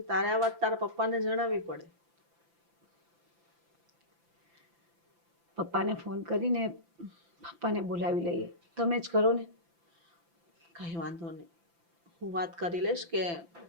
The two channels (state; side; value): late; left; 5.9 ms